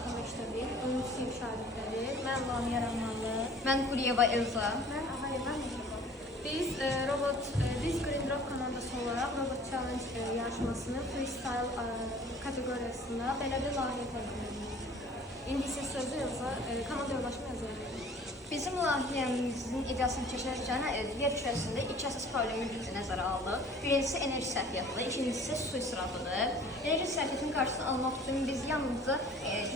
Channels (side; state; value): both; normal; correlation 0.49